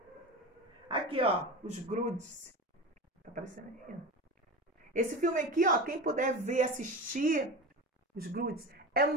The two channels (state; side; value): normal; both; correlation 0.27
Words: Aqui, ó, os Grudes. Tá aparecendo aí, ó. Esse filme aqui, ó, quem puder ver, assistir, os Grudes, é